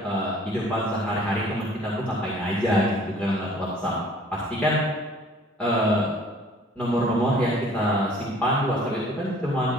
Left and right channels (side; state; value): both; normal; correlation 0.53